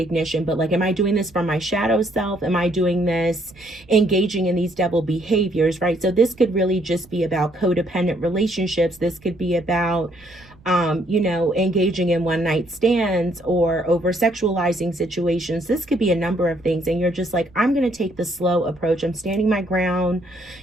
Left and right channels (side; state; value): right; noise; rumble, 27 dB below the sound